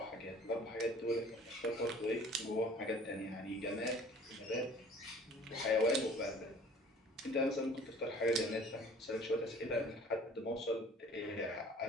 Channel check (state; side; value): normal; both; correlation 0.50